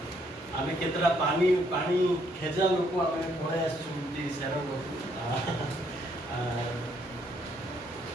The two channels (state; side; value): normal; both; correlation 0.70